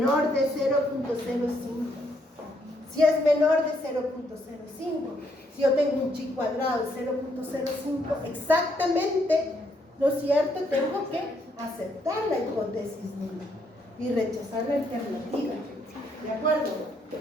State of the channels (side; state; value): both; normal; correlation 0.73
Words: de 0.05. Si es menor de 0.05, si yo tengo un chi cuadrado de 0.05, exactamente, ¿no es cierto? Tengo que aceptar la hipótesis nula y rechazar la alternativa. ¿De acuerdo?